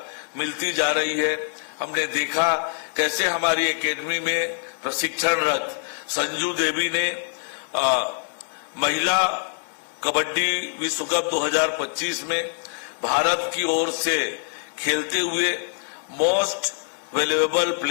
मिलती जा रही है। हमने देखा कैसे हमारी एकेडमी में प्रशिक्षणरत संजू देवी ने महिला कबड्डी विश्व कप 2025 में भारत की ओर से खेलते हुए मोस्ट वैल्यूएबल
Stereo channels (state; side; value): silent; right; digital silence